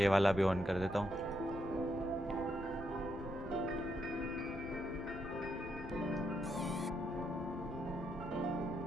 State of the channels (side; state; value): both; normal; correlation 0.79